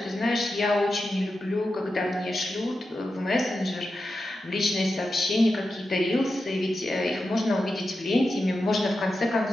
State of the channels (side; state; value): both; normal; correlation 0.90